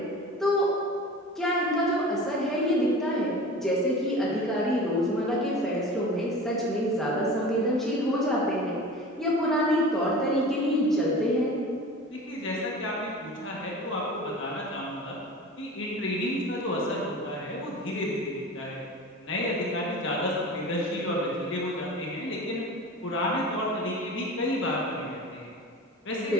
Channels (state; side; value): normal; both; correlation 0.36